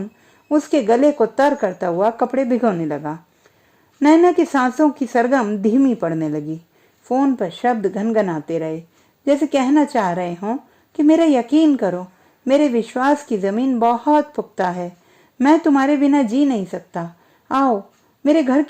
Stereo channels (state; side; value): identical; both; correlation 1.00